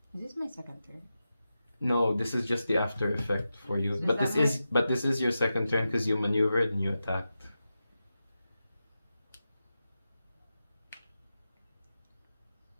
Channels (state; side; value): inverted; both; correlation -0.91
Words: Is this my second turn? No, this is just the after effect for you. So but this is your second turn because you maneuvered and you attacked.